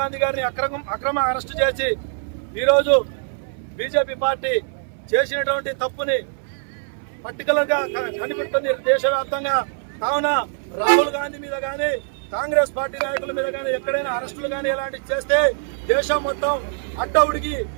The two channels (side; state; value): left; silent; 60 dB below the other